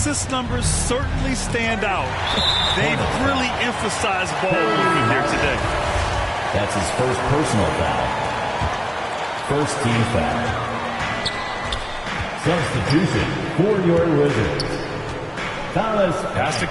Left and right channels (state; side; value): identical; both; correlation 1.00